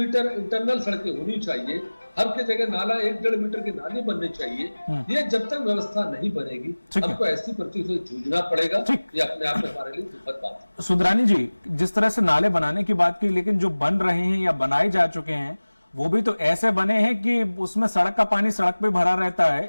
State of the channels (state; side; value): inverted; both; correlation -1.00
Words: इंटरनल सड़कें होनी चाहिए, हर के जगह नाला 1-1.5 मीटर के नाले बनने चाहिए, ये जब तक व्यवस्था नहीं बनेगी हमको ऐसी परिस्थिति से जूझना पड़ेगा। ये अपने आप में हमारे लिए दुखद बात है। सुंदरानी जी, जिस तरह से नाले बनाने की बात की, लेकिन जो बन रहे हैं या बनाए जा चुके हैं वो भी तो ऐसे बने हैं कि उसमें सड़क का पानी सड़क पे भरा रहता